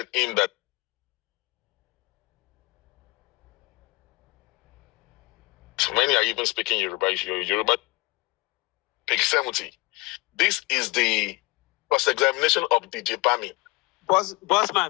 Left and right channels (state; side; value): quieter; right; 24.1 dB